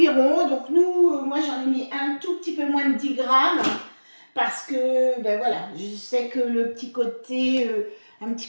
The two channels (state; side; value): inverted; both; correlation -1.00